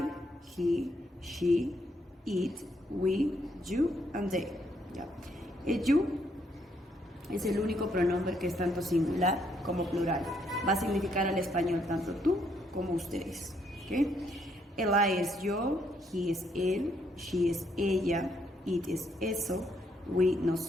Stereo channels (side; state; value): both; normal; correlation 0.72